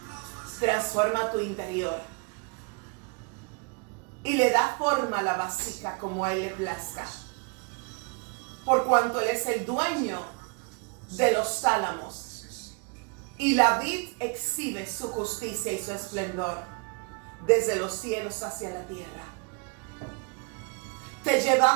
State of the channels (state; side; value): quieter; left; 34.0 dB